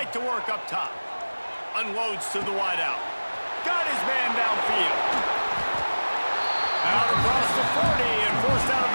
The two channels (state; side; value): inverted; both; correlation -1.00